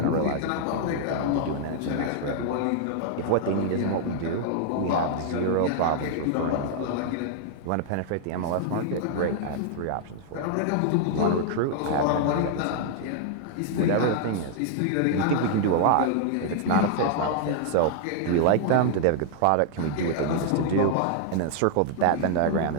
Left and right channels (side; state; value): both; different; correlation -0.01